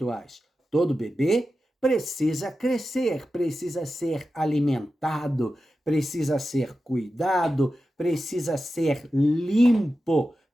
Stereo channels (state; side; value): normal; both; correlation 0.92